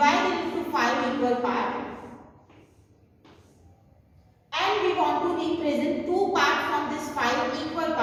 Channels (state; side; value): identical; both; correlation 1.00